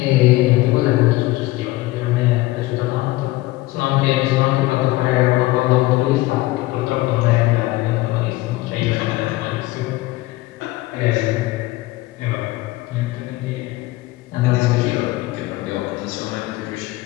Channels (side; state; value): right; quieter; 18.8 dB